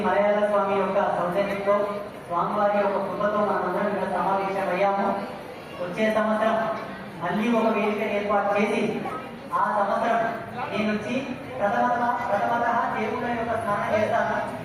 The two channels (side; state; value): both; identical; correlation 1.00